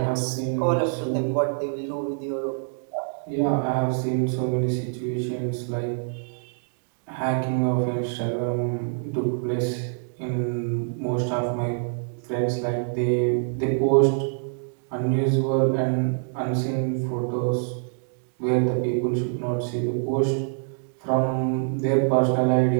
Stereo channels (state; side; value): silent; left; digital silence